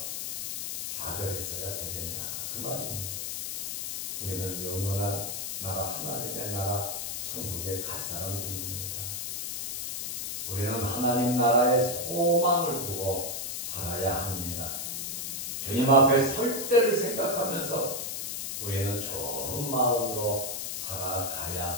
좌절했어야 되겠냐, 그 말입니다. 우리는 영원한 나라, 하나님의 나라 천국에 갈 사람들입니다. 우리는 하나님 나라의 소망을 두고 살아야 합니다. 주님 앞에 설 때를 생각하면서 우리는 좋은 마음으로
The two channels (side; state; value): left; noise; hiss, 4 dB below the sound